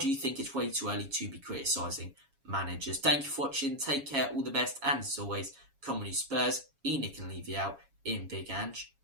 you think it's way too early to be criticising managers? Thank you for watching. Take care. All the best. And as always, come on you Spurs. Nick and leave you out. In Big Ange,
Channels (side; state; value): left; late; 7.3 ms